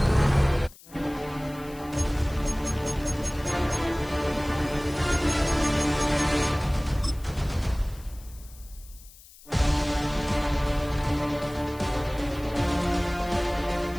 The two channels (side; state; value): left; noise; hiss, 22 dB below the sound